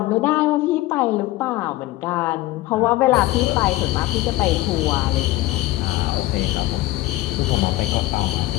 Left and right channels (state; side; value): quieter; right; 17.3 dB